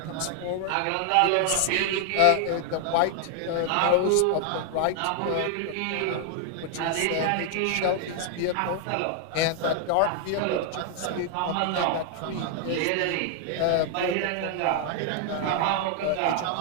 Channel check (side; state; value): both; different; correlation 0.00